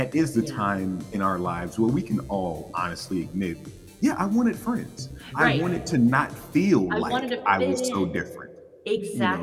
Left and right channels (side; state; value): both; identical; correlation 1.00